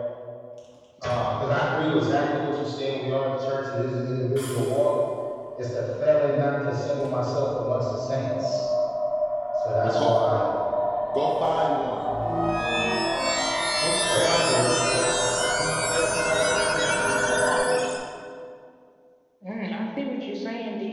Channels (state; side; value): identical; both; correlation 1.00